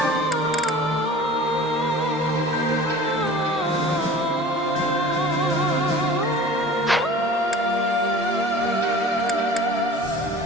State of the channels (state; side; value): normal; both; correlation 0.42